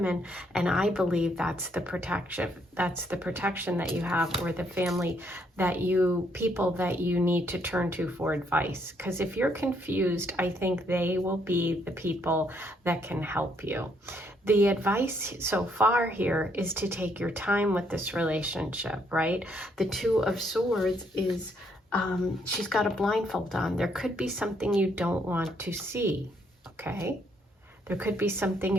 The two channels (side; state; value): both; normal; correlation 0.71